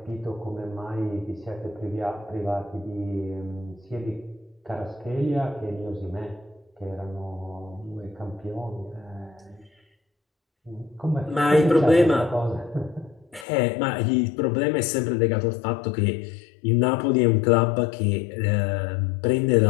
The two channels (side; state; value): right; drops out; at 13.5 s